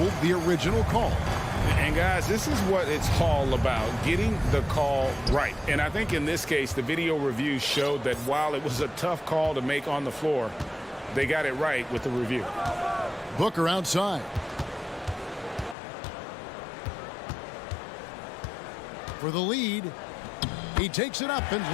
the original call. And guys, this is what it's all about, getting the call right. And I think in this case, the video review showed that while it was a tough call to make on the floor, they got it right with the review. Booker outside. For the lead, he takes it up and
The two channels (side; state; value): right; drops out; at 15.8 s